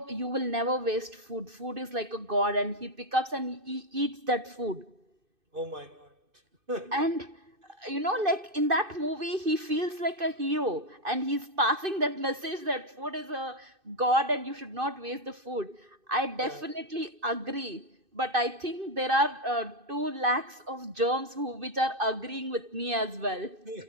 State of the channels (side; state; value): left; late; 2.5 ms